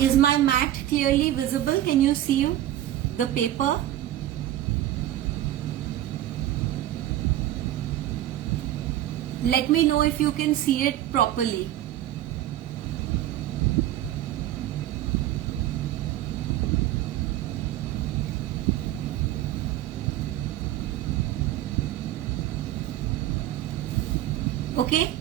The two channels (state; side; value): quieter; left; 13.2 dB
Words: my mat clearly visible? Can you see the paper? Let me know if you can see it properly. Okay,